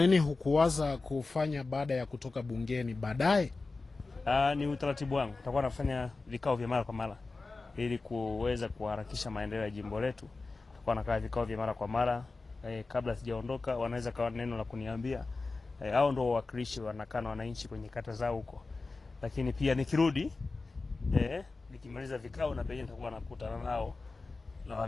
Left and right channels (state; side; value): quieter; right; 3.7 dB